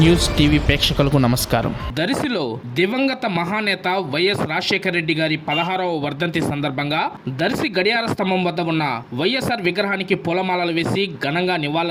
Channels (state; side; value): identical; both; correlation 1.00